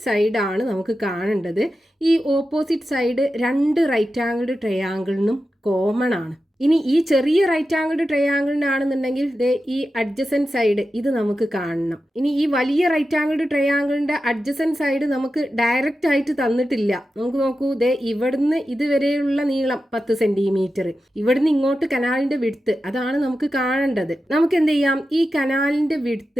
സൈഡാണ് നമുക്ക് കാണേണ്ടത്. ഈ ഓപ്പോസിറ്റ് സൈഡ് രണ്ട് റൈറ്റ് ആംഗിൾഡ് ട്രയാങ്കിളിനും കോമൺ ആണ്. ഇനി ഈ ചെറിയ റൈറ്റ് ആംഗിൾഡ് ട്രയാങ്കിളിനാണെന്നുണ്ടെങ്കിൽ ഈ അഡ്ജസൻറ്റ് സൈഡ് ഇത് നമുക്ക് കാണണം. ഇനി ഈ വലിയ റൈറ്റ് ആംഗിൾഡ് ട്രയാങ്കിളിൻ്റെ അഡ്ജസൻറ്റ് സൈഡ് നമുക്ക് ഡയറക്റ്റ് ആയിട്ട് തന്നിട്ടില്ല. നമുക്ക് നോക്കൂ, ഇവിടുന്ന് ഇതുവരെയുള്ള നീളം 10 സെന്റിമീറ്റർ, ഇവിടുന്ന് ഇങ്ങോട്ട് കനാലിന്റെ വിഡ്ത്ത് അതാണ് നമുക്ക് കാണേണ്ടത്. നമുക്ക് എന്ത് ചെയ്യാം, ഈ കനാലിന്റെ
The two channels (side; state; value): both; normal; correlation 0.91